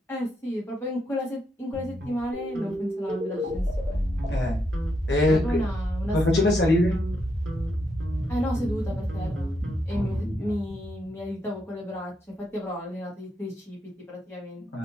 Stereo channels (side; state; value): both; normal; correlation 0.79